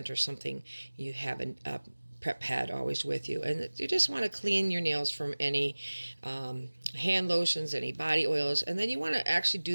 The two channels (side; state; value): both; inverted; correlation -1.00